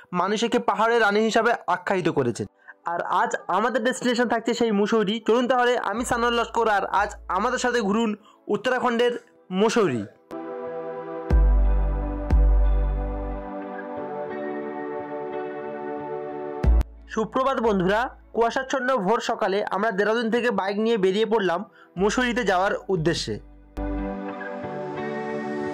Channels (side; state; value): both; identical; correlation 1.00